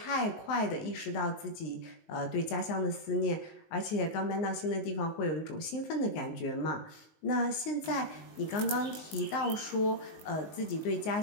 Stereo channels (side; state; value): right; late; 19 ms